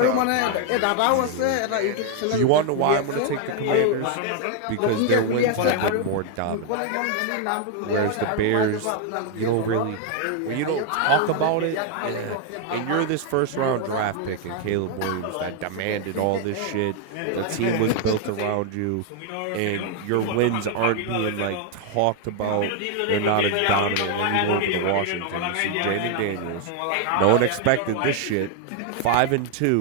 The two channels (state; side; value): different; both; correlation 0.01